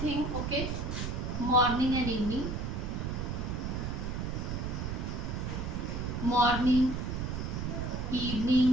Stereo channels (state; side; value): noise; right; rumble, 2 dB below the sound